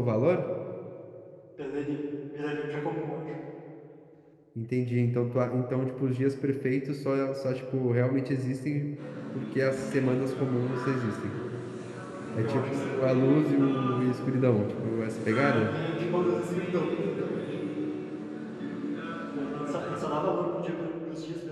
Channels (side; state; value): both; identical; correlation 1.00